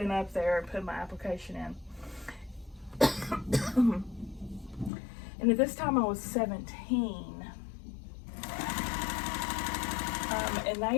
up there and put my application in. And at this time I was 17. And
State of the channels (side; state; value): right; drops out; at 4.9 s